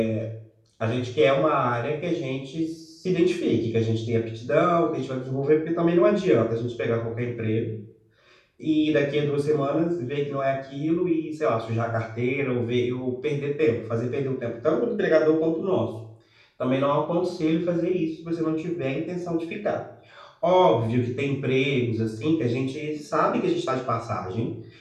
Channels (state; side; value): identical; both; correlation 1.00